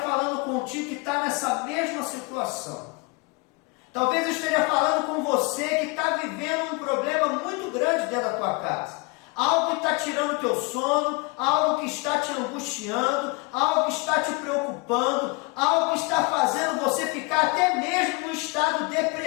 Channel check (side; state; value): right; quieter; 27.6 dB